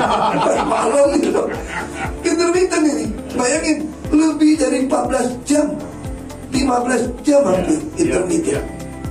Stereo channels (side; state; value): both; identical; correlation 1.00